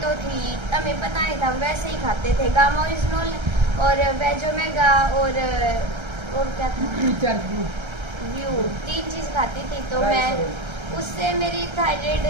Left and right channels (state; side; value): late; left; 1.3 ms